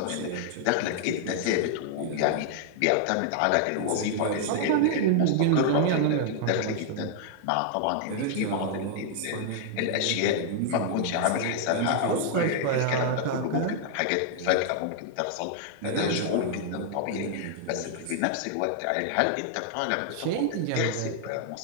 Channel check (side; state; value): both; different; correlation 0.00